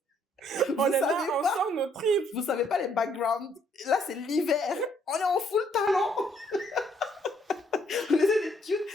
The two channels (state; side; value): normal; both; correlation 0.68